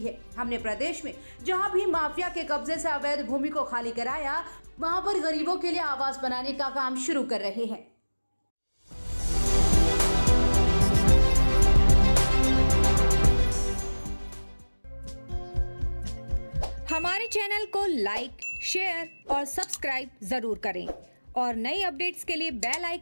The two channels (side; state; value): both; inverted; correlation -1.00